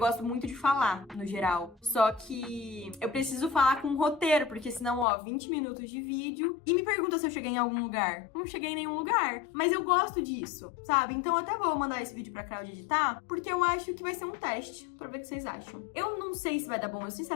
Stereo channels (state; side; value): drops out; right; at 5.1 s